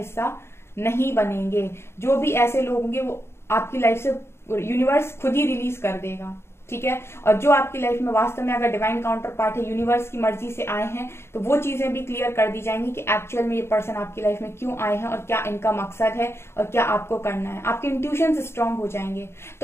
नहीं बनेंगे। जो भी ऐसे लोग होंगे वो आपकी लाइफ से यूनिवर्स खुद ही रिलीज कर देगा। ठीक है, और जो आपकी लाइफ में वास्तव में अगर डिवाइन काउंटर पार्ट है, यूनिवर्स की मर्जी से आए हैं, तो वो चीजें भी क्लियर कर दी जाएंगी कि एक्चुअल में ये पर्सन आपकी लाइफ में क्यों आए हैं और क्या इनका मकसद है और क्या आपको करना है। आपके इंट्यूशन स्ट्रांग हो जाएंगे।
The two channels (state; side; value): late; right; 0.12 ms